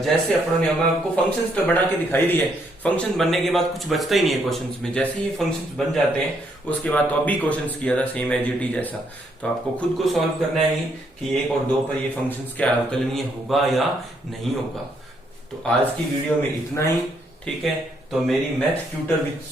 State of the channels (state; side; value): normal; both; correlation 0.73